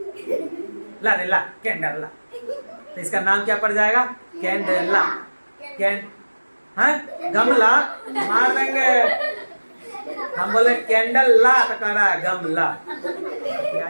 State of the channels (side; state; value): both; inverted; correlation -1.00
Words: ला रे ला, कैंडला। तो इसका नाम क्या पड़ जाएगा? कैंडला। गमला मार देंगे हम, बोले कैंडल ला तो कह रहा है गमला।